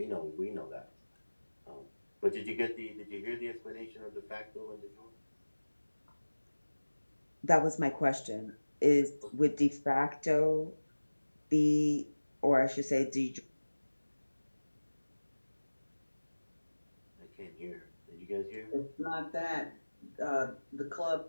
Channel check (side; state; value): both; inverted; correlation -1.00